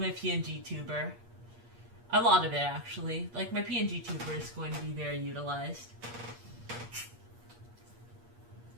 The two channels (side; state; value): left; late; 8.4 ms